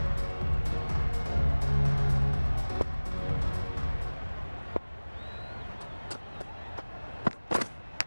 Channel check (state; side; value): inverted; both; correlation -1.00